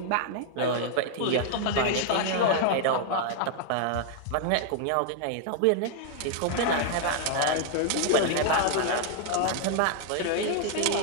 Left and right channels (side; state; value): both; different; correlation 0.00